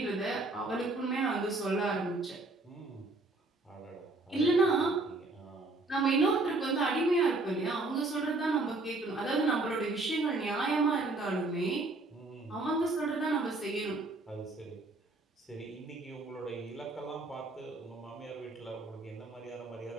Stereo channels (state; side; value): quieter; left; 3.1 dB